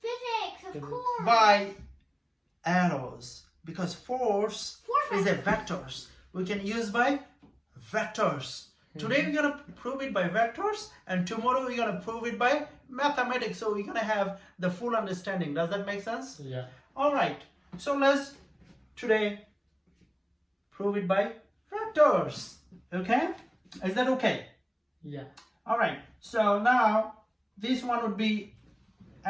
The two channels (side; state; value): both; identical; correlation 1.00